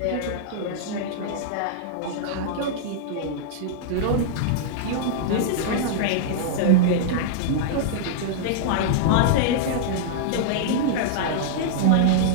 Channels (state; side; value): different; both; correlation -0.01